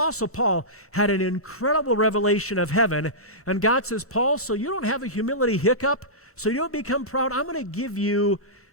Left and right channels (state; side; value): normal; both; correlation -0.17